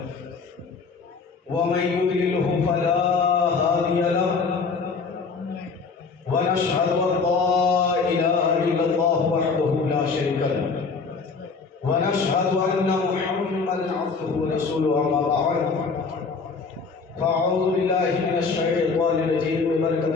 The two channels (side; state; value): right; quieter; 4.7 dB